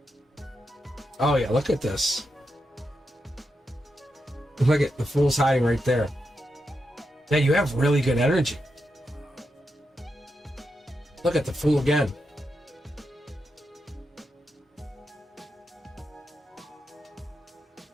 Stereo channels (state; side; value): normal; both; correlation 0.86